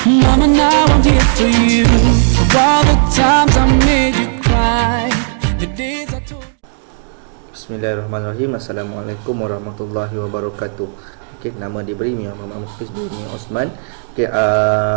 Mama, now I'm here for you. For all the times I made you cry, the days I told. Bismillahirrahmanirrahim. Assalamualaikum warahmatullahi wabarakatuh. Okey, nama diberi Muhammad Hafiz bin Osman. Okey,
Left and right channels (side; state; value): left; silent; digital silence